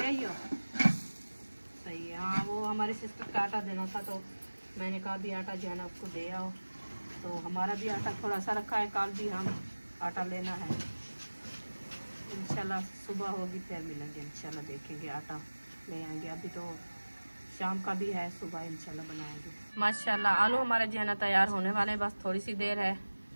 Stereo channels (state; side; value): inverted; both; correlation -1.00